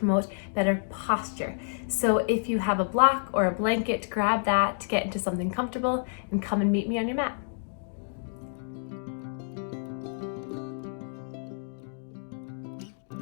better posture. So if you have a block or a blanket, grab that to get into something comfortable and come and meet me on your mat.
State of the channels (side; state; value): right; silent; digital silence